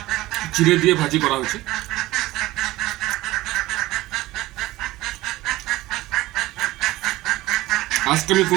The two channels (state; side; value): quieter; left; 18.0 dB